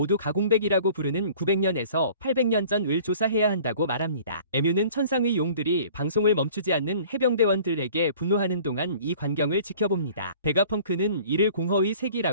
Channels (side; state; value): both; inverted; correlation -0.49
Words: 가공백이라고 부르는 900년에서 800년 전을 조사해야 한다고 말합니다. 에뮤는 천상의 용들이 방송을 멈추지 않는 해병대원들에게 분노하는 동안 이 광경을 지켜봅니다. 베가펑크는 이를 공허의